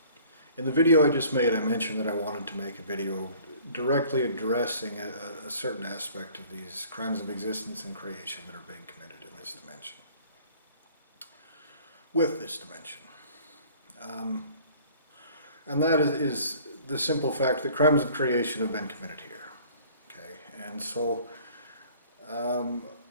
in the video I just made, I mentioned that I wanted to make a video directly addressing a certain aspect of these crimes of existence and creation that are being committed in this dimension. With this dimension. And that is the simple fact that crimes of creation have been committed here. Okay, and so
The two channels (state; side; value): inverted; both; correlation -0.52